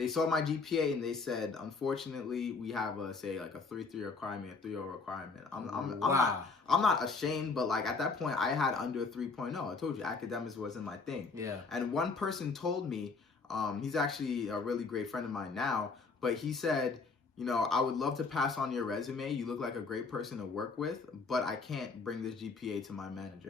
saw my GPA and they said, unfortunately, we have a 3.3 requirement, a 3.0 requirement. I'm not ashamed, but like at that point I had under a 3.0. I told you academics wasn't my thing. Yeah. And one person told me, he's actually a really great friend of mine now, but he said, I would love to pass on your resume. You look like a great person to work with, but I can't bring this GPA to my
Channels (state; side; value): quieter; right; 4.3 dB